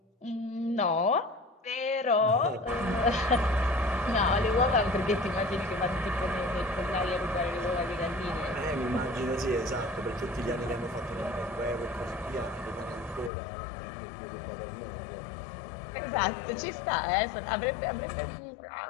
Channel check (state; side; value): drops out; right; at 13.3 s